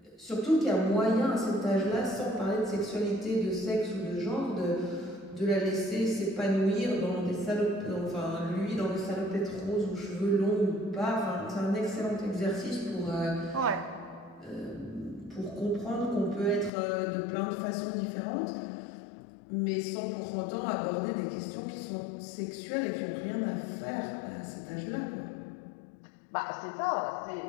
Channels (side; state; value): right; drops out; at 16.7 s